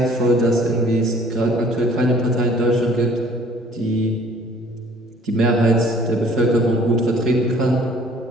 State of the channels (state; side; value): normal; both; correlation 0.55